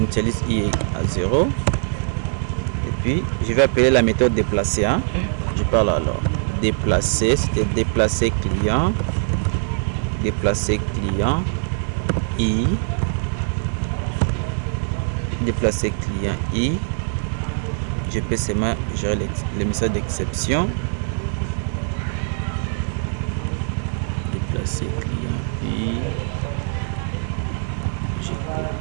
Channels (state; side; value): silent; left; 64 dB below the other